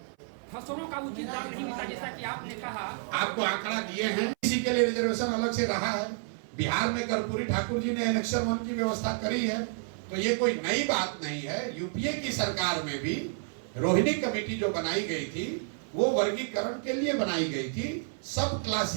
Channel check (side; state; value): left; silent; 56 dB below the other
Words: फसलों का उचित दाम नहीं मिलता, जैसा कि आपने कहा। आपको आंकड़ा दिए हैं, इसी के लिए रिजर्वेशन अलग से रहा है। बिहार में कर्पूरी ठाकुर जी ने इलेक्शन 1 की व्यवस्था करी है, तो ये कोई नई बात नहीं है। यूपीए की सरकार में भी रोहिणी कमेटी जो बनाई गई थी वो वर्गीकरण के लिए बनाई गई थी, सब